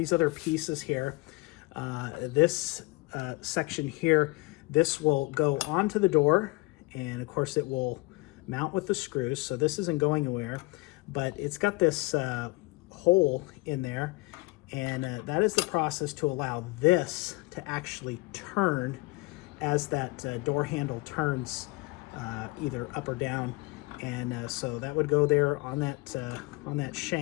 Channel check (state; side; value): quieter; right; 23.7 dB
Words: other pieces here. This section here, this will go onto the door, and of course it will mount with the screws, so this isn't going anywhere, but it's got this hole in there, and that is the process to allow this to actually turn as that door handle turns either up or down. And so that would go there on that